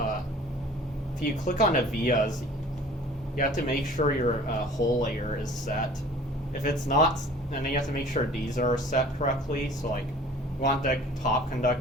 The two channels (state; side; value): normal; both; correlation 0.47